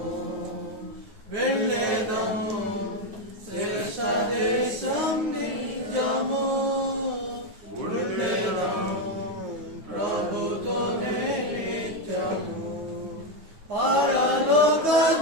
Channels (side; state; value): left; late; 9.4 ms